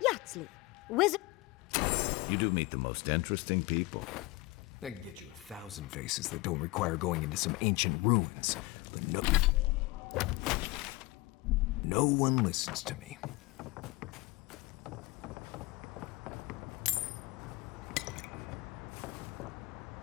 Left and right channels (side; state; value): right; quieter; 21.9 dB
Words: wizard... You do meet the most interesting people. I can get you 1,000 faces that don't require going into some ancient ruins. But no one listens to me.